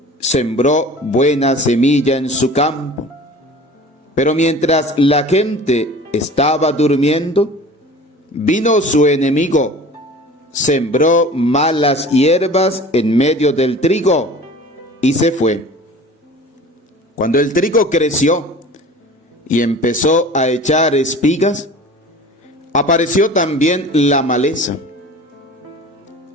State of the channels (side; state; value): both; normal; correlation 0.41